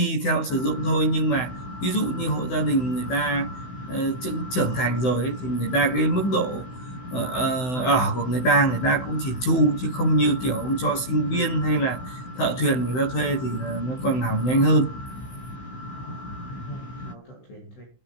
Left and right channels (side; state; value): right; late; 16 ms